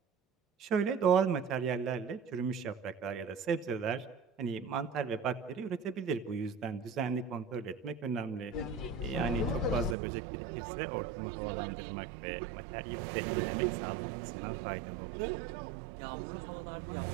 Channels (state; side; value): drops out; left; at 10.0 s